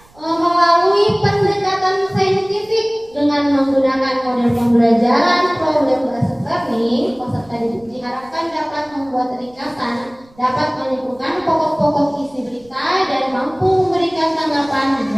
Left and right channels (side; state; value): right; noise; rumble, 28 dB below the sound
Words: melalui pendekatan saintifik dengan menggunakan model pembelajaran problem based learning. Peserta didik diharapkan dapat membuat ringkasan, dapat menyimpulkan pokok-pokok isi berita dan mampu memberikan tanggapan